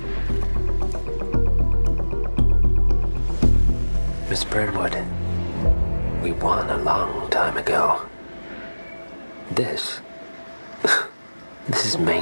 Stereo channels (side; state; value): both; inverted; correlation -1.00